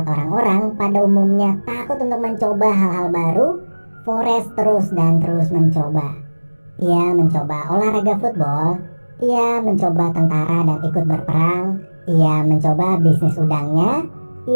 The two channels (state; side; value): inverted; both; correlation -1.00